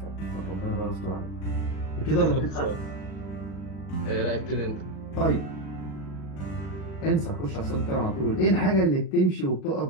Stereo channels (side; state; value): right; late; 38 ms